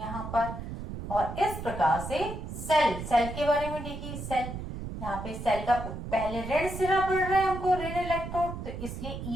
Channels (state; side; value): noise; right; rumble, 8 dB below the sound